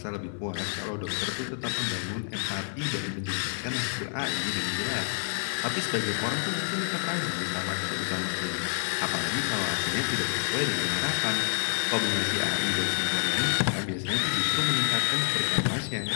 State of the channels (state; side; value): silent; right; digital silence